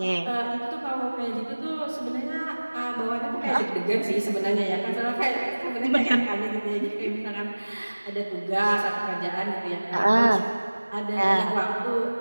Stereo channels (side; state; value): both; inverted; correlation -1.00